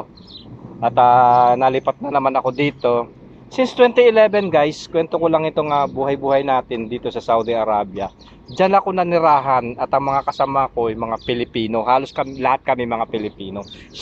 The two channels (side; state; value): both; identical; correlation 1.00